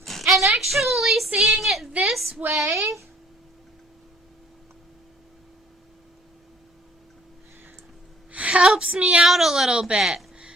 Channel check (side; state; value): both; normal; correlation 0.58